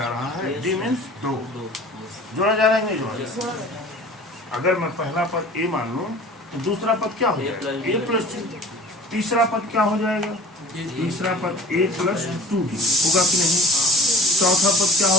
रहा है, d मीन्स 2 जोड़ा जा रहा है, नहीं जोड़ा जा रहा है। अगर मैं पहला पद a मान लूं तो दूसरा पद क्या हो जाएगा? a प्लस 2, तीसरा पद क्या हो जाएगा? तीसरा पद a प्लस 2d होगा कि नहीं? चौथा पद क्या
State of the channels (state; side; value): normal; both; correlation 0.44